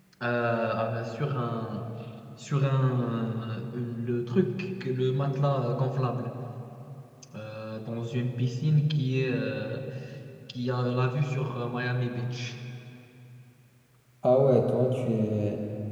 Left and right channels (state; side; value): identical; both; correlation 1.00